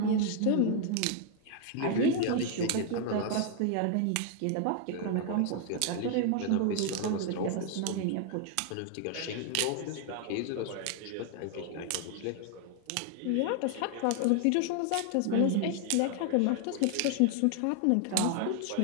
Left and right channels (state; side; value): different; both; correlation 0.00